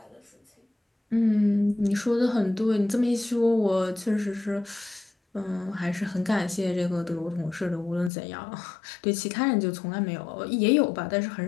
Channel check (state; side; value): drops out; right; at 8.1 s